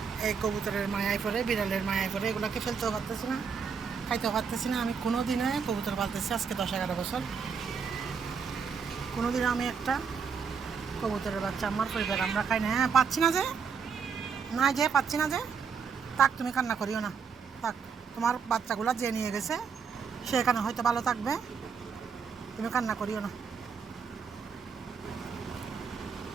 এই কবুতরের মায়ায় পড়ে, বিড়ালের মায়ায় পড়ে, এগুলোকে ফেলতেও পারতেছি না, খাইতেও পারতেছি না। আমি কোনো দিনে কবুতর পালতেছি আজকে 10-11 বছর, কোনো দিনে আমি একটা কবুতরের বাচ্চা আমার পরিবার আমরা খাই না। হ্যাঁ, পাচ্ছি না যে, না যে পাচ্ছি না যে, থাক, তুমি কান্না করিও না, থাক। তোমার বাচ্চাগুলো যে নিয়ে গেছে সে এখানে হয়তো ভালো থাকবে, তুমি কান্না করিও না।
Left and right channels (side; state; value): left; quieter; 6.2 dB